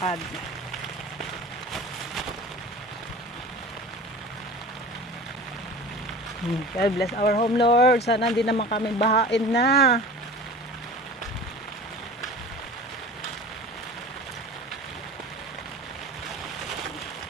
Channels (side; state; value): both; normal; correlation 0.38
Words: God bless our home, Lord. Sana hindi naman kami bahain na.